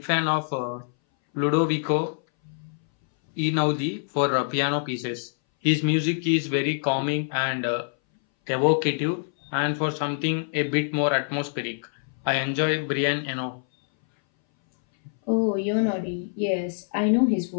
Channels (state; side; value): silent; right; 60 dB below the other